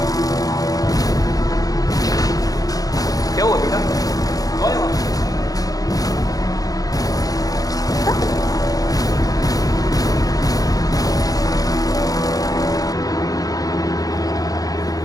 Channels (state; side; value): late; right; 0.18 ms